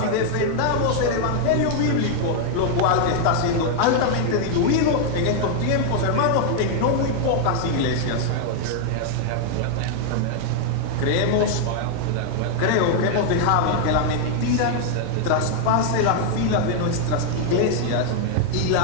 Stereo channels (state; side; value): different; both; correlation 0.00